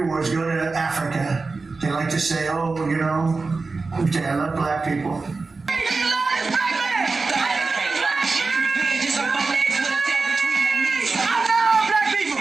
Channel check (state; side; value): quieter; left; 4.0 dB